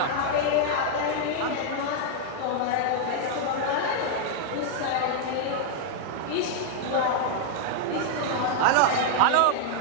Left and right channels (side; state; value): both; different; correlation -0.01